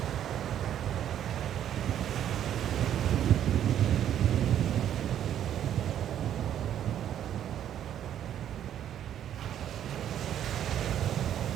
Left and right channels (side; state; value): left; quieter; 10.4 dB